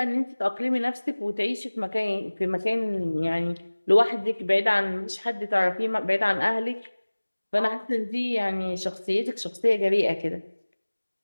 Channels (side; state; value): both; inverted; correlation -1.00